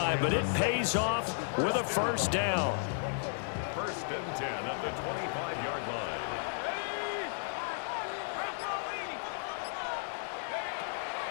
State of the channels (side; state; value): right; silent; digital silence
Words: but it pays off with a first down. First and 10 at the 25-yard line.